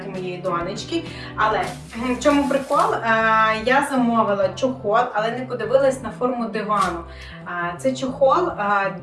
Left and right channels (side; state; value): both; identical; correlation 1.00